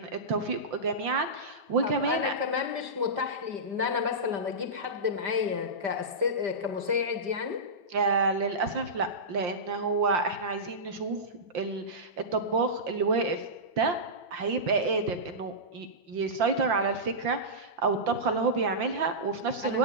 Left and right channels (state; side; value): late; left; 5.1 ms